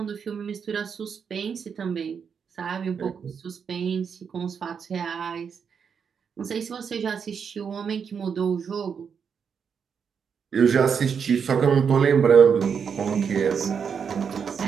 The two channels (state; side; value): quieter; left; 6.7 dB